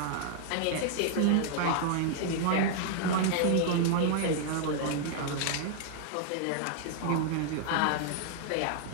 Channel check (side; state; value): both; different; correlation -0.01